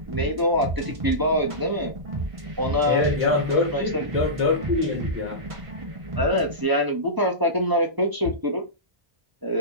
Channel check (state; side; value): late; left; 1.0 ms